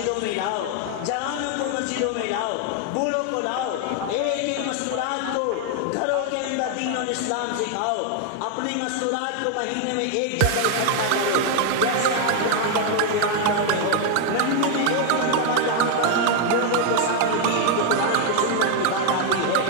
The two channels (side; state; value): both; different; correlation 0.00